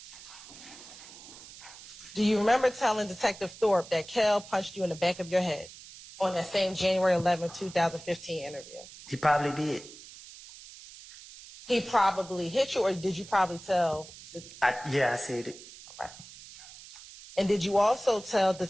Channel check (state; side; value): noise; right; hiss, 17 dB below the sound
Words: Do you remember telling Detective Thorpe that Kel punched you in the back of your head on that same January 11, 2015 interview? he probably did. He probably hit you, or did you probably tell? Yeah, I said it. Right. And did you also tell